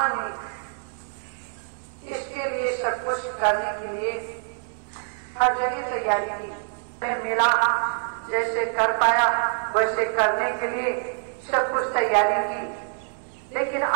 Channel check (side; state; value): left; silent; 61 dB below the other